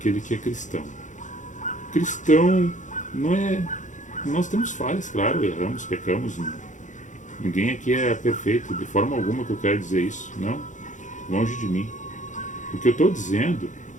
que é cristão. Cristão não é... Nós temos falhas, claro, erramos, pecamos. Ninguém aqui é perfeito, de forma alguma que eu quero dizer isso. Não, longe de mim. O que eu estou dizendo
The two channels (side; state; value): right; late; 0.36 ms